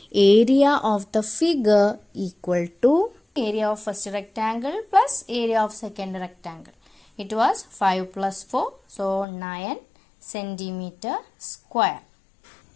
area of the figure equal to area of first rectangle plus area of second rectangle. It was 5 plus 4, so 9 centimeter square.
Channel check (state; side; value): drops out; right; at 9.2 s